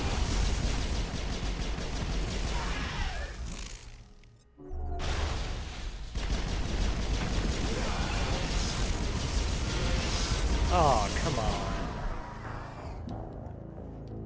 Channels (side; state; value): both; identical; correlation 1.00